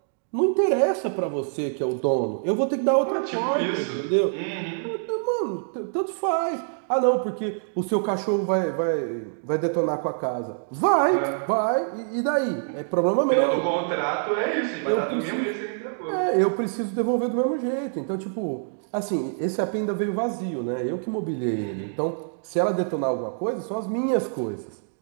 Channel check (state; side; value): silent; left; digital silence